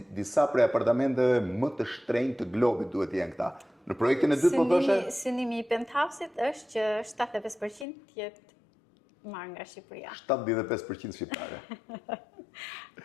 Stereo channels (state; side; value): drops out; right; at 7.9 s